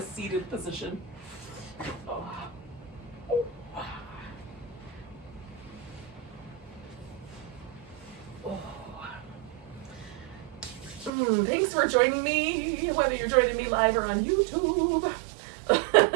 seated position. Oh. Thanks for joining me, whether you're joining me live or on YouTube.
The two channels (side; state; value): left; drops out; at 11.1 s